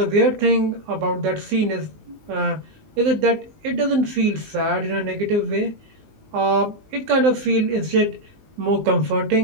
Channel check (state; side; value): late; left; 19 ms